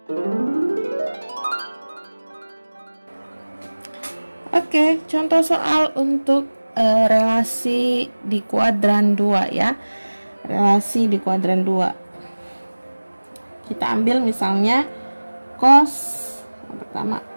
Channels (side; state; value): both; inverted; correlation -1.00